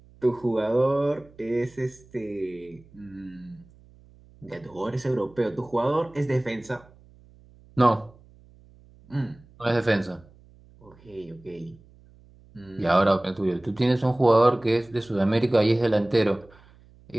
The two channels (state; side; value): noise; right; hum, 26 dB below the sound